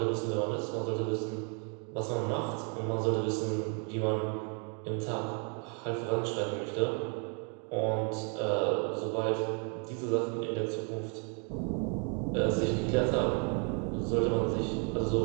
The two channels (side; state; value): left; quieter; 38.4 dB